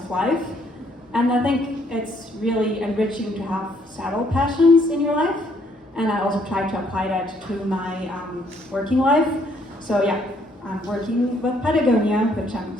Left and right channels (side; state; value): both; normal; correlation 0.67